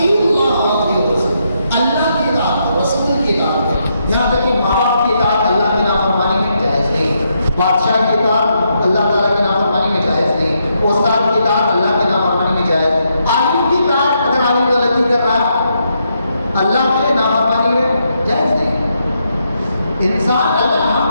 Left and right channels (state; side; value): inverted; both; correlation -0.79